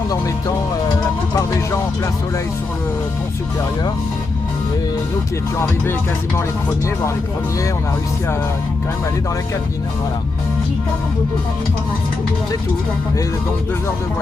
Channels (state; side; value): quieter; right; 3.6 dB